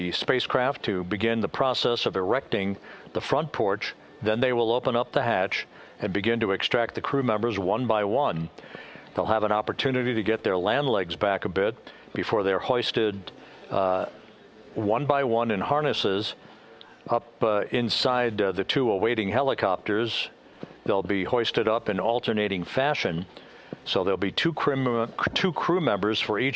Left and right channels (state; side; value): identical; both; correlation 1.00